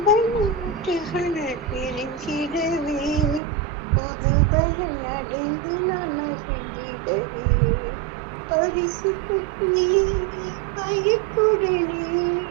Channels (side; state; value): left; drops out; at 3.4 s